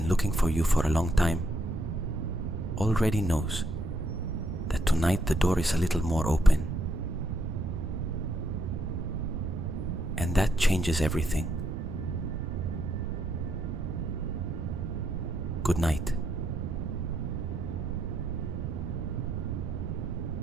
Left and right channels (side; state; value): right; noise; rumble, 3 dB below the sound